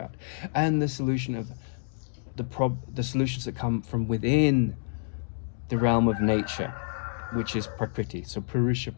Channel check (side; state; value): right; silent; digital silence